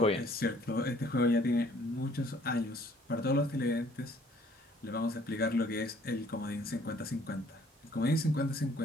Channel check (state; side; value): normal; both; correlation 0.59